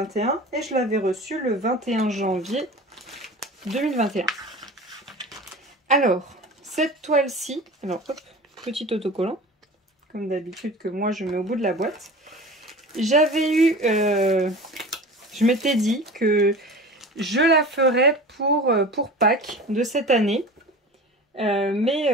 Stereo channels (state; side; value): normal; both; correlation 0.37